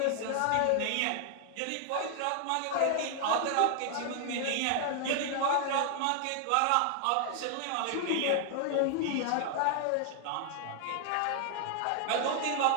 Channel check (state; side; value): different; both; correlation 0.00